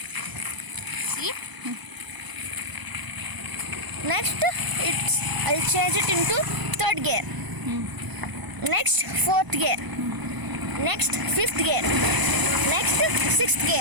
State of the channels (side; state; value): left; late; 1.0 ms